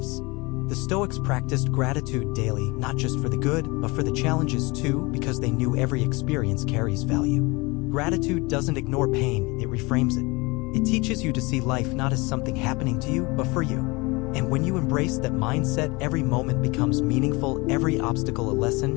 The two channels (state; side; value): quieter; right; 25.1 dB